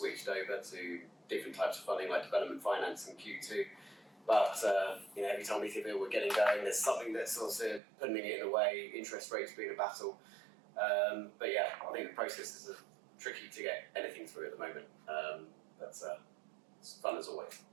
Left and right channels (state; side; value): drops out; left; at 7.8 s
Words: over to different types of funding like development finance in Q2. But every time we think we're getting going, there's something that's also putting it in a way, interest rates being a battle. But yeah, I think the processes are tricky to get anything through at the moment. But it's fun as always.